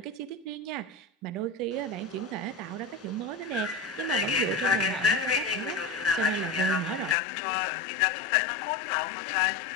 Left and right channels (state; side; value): drops out; right; at 7.2 s